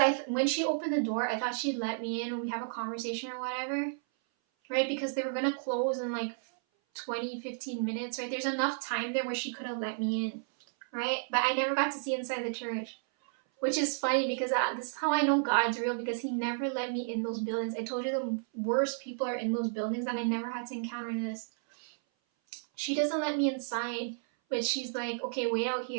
when she opened the door, I thought she'd let me in and we have a conversation or whatever, right? Because they were going to close in like 20-15 minutes, right? There's enough time there where she could have let me in, right? But I never got to see inside the church. Which is funny because this is how I know God's real, because he never let me in those buildings. I told you the worst people are in those buildings and I never had to encounter this. She doesn't let me inside, but she's like, okay, wait out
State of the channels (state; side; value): silent; left; 56 dB below the other